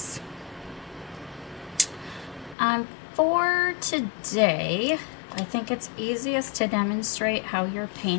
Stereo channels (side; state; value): right; drops out; at 2.6 s